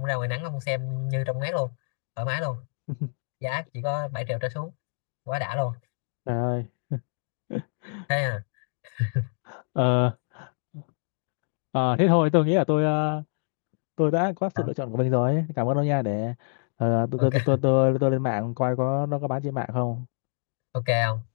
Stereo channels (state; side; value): silent; right; 60 dB below the other